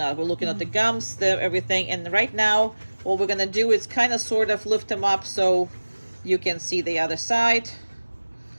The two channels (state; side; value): inverted; both; correlation -1.00